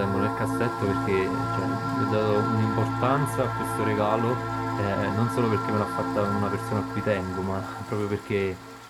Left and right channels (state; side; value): identical; both; correlation 1.00